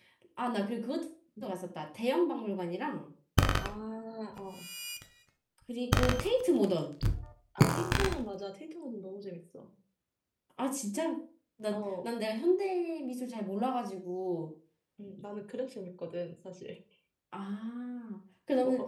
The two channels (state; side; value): identical; both; correlation 1.00